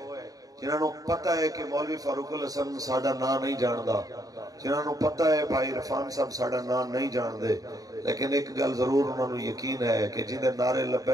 جنہاں نو پتہ ہے کہ مولوی فاروق الحسن ساڈا نام نہیں جاندا، جنہاں نو پتہ ہے بھائی عرفان صاحب ساڈا نام نہیں جان دے، لیکن ایک گل ضرور انہاں نو یقین ہے کہ جندے نعرے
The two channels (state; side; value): late; left; 0.18 ms